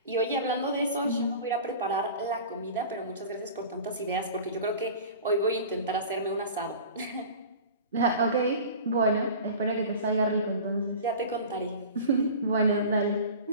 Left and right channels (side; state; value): both; inverted; correlation -0.38